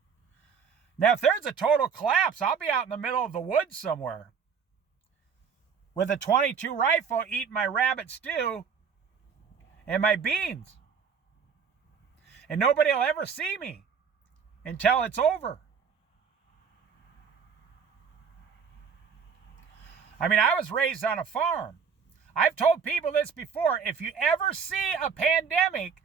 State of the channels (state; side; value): quieter; left; 6.4 dB